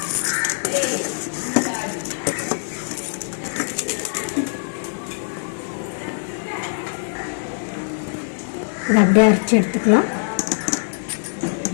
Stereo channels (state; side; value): silent; right; digital silence